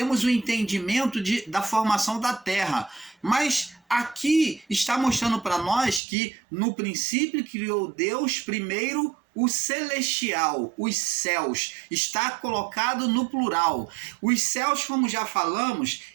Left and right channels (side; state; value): left; drops out; at 6.0 s